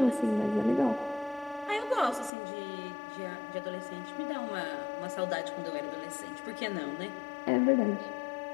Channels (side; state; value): right; drops out; at 2.3 s